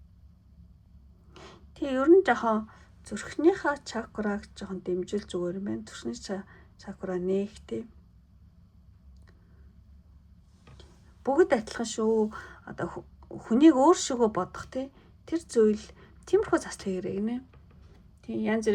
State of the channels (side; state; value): both; identical; correlation 1.00